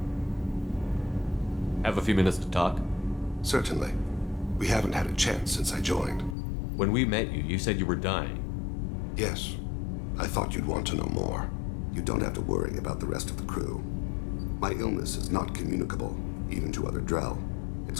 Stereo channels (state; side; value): drops out; right; at 6.4 s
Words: Have a few minutes to talk? Certainly. We haven't had a chance since I joined. When we met you, you said you were dying. Yes. I thought you'd want to know more. You don't have to worry about the rest of the crew. My illness is not communicable, even to other Drell. It's